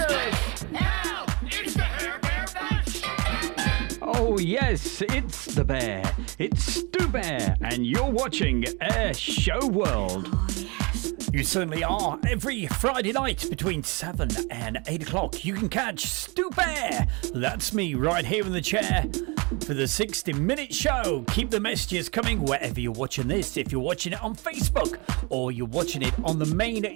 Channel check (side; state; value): left; quieter; 29.0 dB